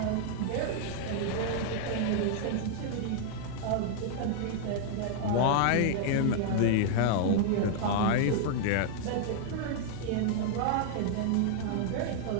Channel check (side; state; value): both; different; correlation 0.00